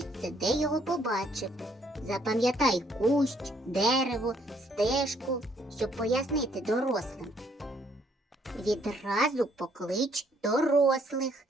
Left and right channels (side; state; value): both; normal; correlation 0.67